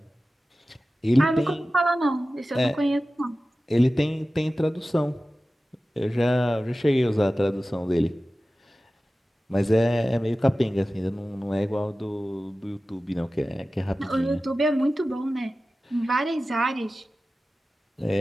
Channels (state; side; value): normal; both; correlation 0.95